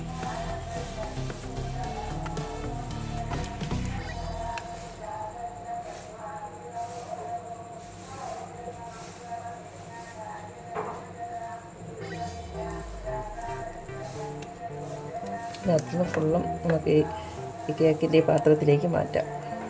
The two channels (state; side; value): identical; both; correlation 1.00